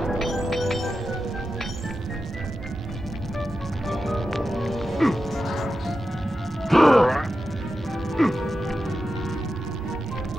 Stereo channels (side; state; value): both; normal; correlation 0.91